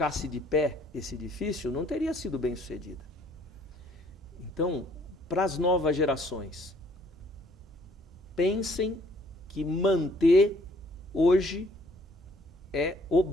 de pé esse edifício, não teria sido bem sucedida. Então, para as novas gerações, pensem que manter hoje é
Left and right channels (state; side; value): normal; both; correlation 0.62